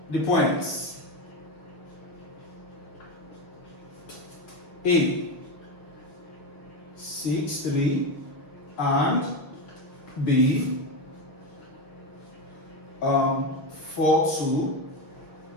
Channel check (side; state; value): right; late; 6.2 ms